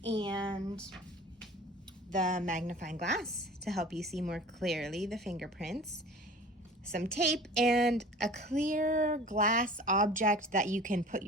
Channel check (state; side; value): normal; both; correlation 0.42